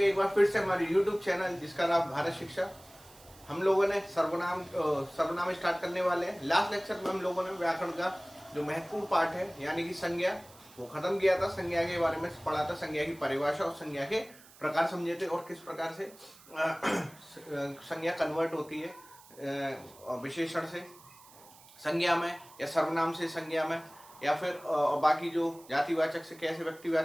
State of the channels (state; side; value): noise; right; hiss, 23 dB below the sound